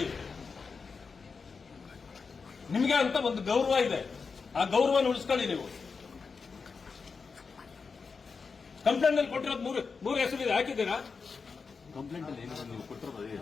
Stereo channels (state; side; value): quieter; right; 5.0 dB